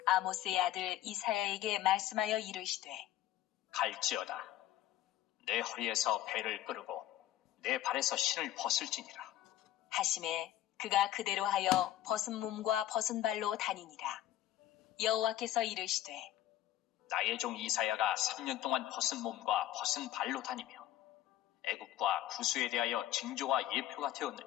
아모스의 아들 이사야에게 말씀하여 이르시되 갈지어다. 내 허리에서 배를 끄르고 내 발에서 신을 벗을지니라. 하심에 그가 그대로 하여 벗은 몸과 벗은 발로 다니니라. 여호와께서 이르시되 나의 종 이사야가 3년 동안 벗은 몸과 벗은 발로 다니며 애굽과 구스에 대하여 징조와 예표가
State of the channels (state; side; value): quieter; right; 13.2 dB